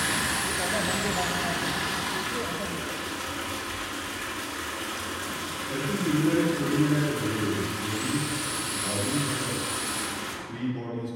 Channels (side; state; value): both; identical; correlation 1.00